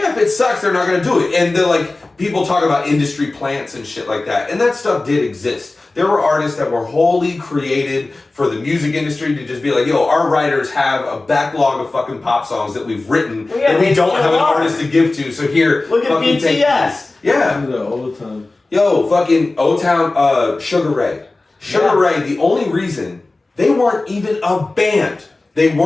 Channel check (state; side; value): quieter; right; 3.2 dB